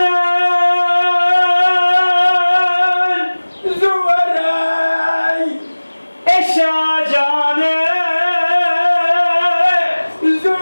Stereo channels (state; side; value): inverted; both; correlation -1.00